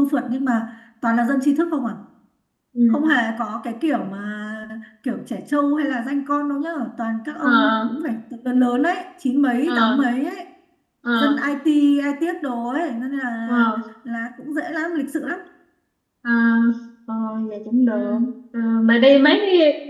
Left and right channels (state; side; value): identical; both; correlation 1.00